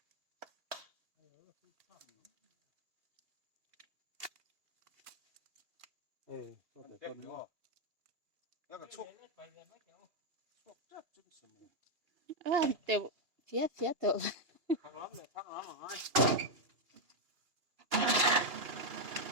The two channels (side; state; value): left; late; 2.8 ms